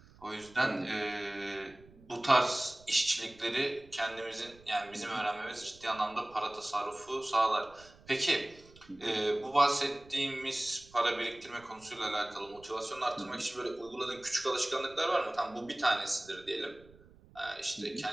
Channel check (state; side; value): noise; right; rumble, 24 dB below the sound